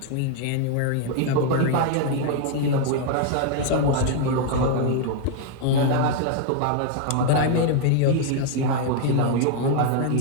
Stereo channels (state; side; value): different; both; correlation 0.00